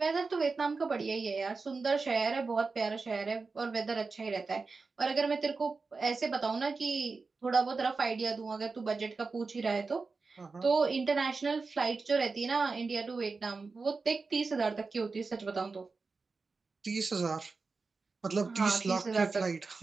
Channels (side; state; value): left; quieter; 4.3 dB